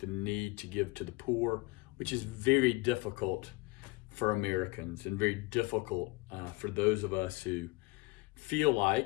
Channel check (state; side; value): quieter; right; 23.0 dB